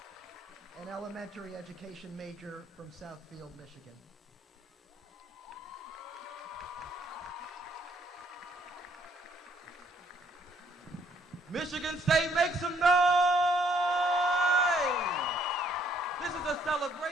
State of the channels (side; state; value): both; normal; correlation 0.66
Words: an elementary education major from Southfield, Michigan. Michigan State, make some noise! This is a